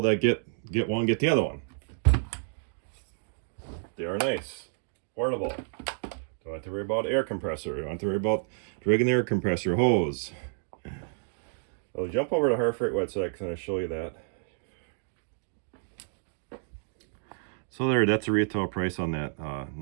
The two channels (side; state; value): left; silent; digital silence